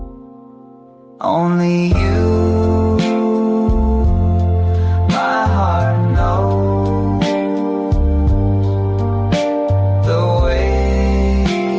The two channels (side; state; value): both; identical; correlation 1.00